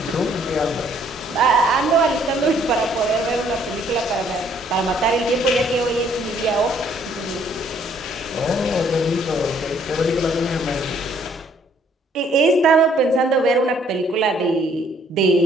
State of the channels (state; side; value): normal; both; correlation 0.64